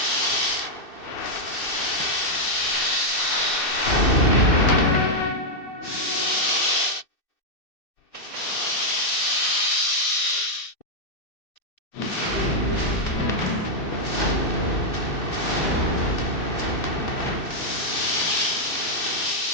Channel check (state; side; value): late; right; 2.6 ms